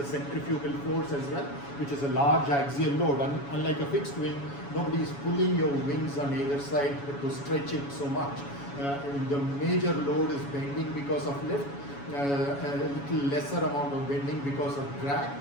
centrifugal force as well, which is a large axial load. Unlike a fixed wing, nobody is pulling your wings on either side to stretch it so much. The major load is bending because of lift, a little lesser amount of bending because of drag,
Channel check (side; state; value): right; late; 7.1 ms